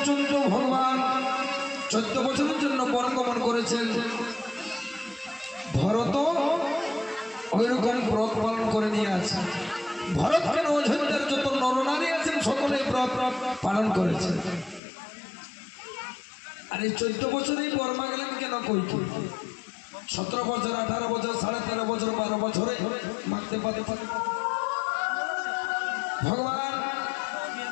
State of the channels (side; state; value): right; drops out; at 14.8 s